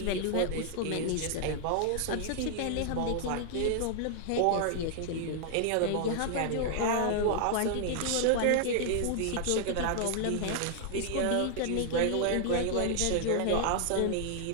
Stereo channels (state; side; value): different; both; correlation 0.00